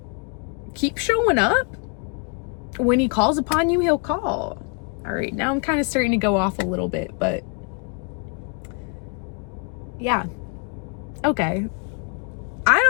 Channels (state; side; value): quieter; right; 36.4 dB